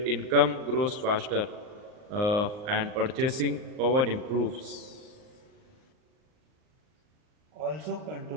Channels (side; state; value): left; late; 39 ms